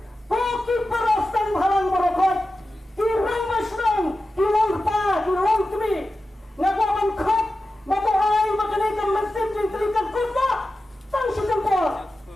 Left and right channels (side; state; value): both; normal; correlation 0.93